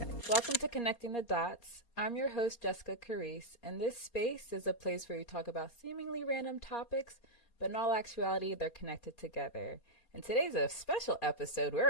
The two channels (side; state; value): right; late; 4.3 ms